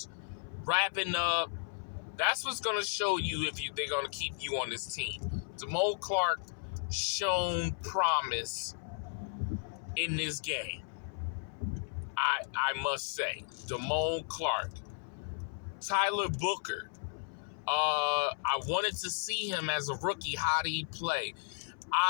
wrapping up. That's what's going to show you if they're going to keep you on this team. Damone Clark shown promise in this game. I must say, Damone Clark, Tyler Booker. I wanted to see him as a rookie. How did he play?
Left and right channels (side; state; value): right; silent; 55 dB below the other